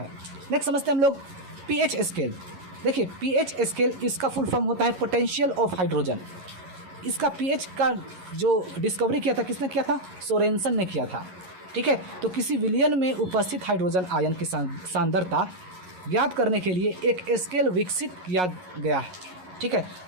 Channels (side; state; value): left; late; 11 ms